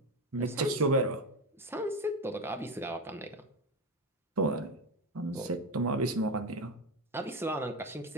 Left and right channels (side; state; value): both; normal; correlation 0.17